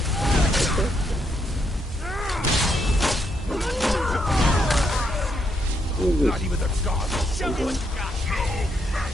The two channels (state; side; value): normal; both; correlation 0.77